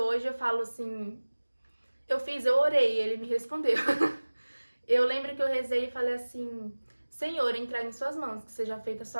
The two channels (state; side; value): inverted; both; correlation -1.00